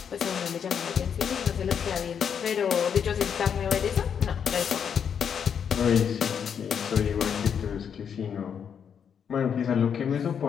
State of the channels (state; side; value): quieter; right; 7.6 dB